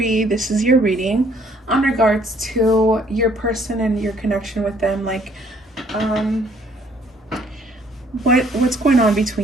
This is your reading on regards to your person and your connection with them. Like, what's going on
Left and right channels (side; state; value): both; normal; correlation 0.62